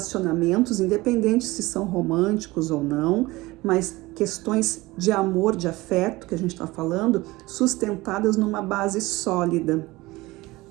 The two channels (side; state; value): left; quieter; 20.4 dB